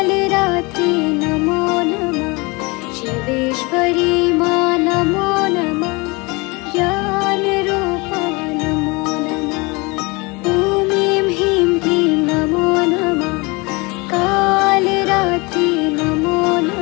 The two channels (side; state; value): right; quieter; 26.6 dB